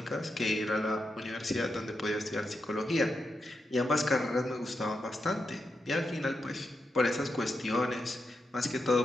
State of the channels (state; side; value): normal; both; correlation 0.86